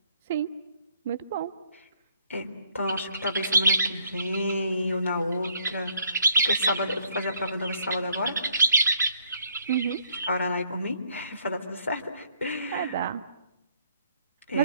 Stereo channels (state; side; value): inverted; both; correlation -0.68